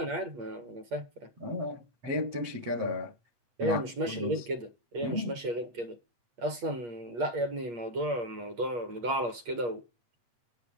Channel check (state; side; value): late; left; 8.5 ms